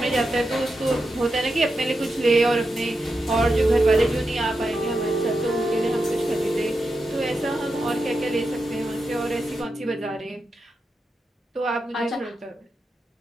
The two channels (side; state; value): both; normal; correlation 0.88